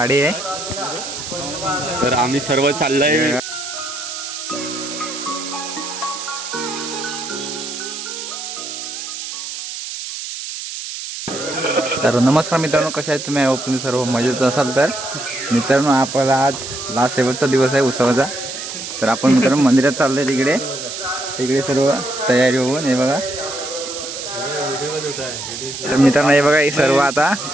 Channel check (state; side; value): noise; right; hiss, 8 dB below the sound